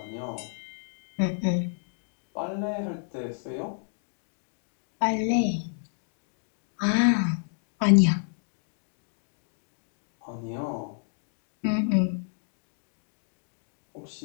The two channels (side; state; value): right; silent; 58 dB below the other